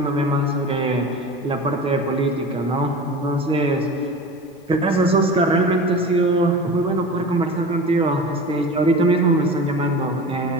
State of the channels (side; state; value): both; normal; correlation 0.33